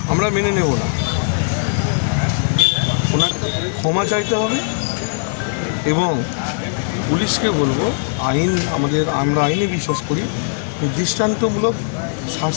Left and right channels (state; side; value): silent; right; digital silence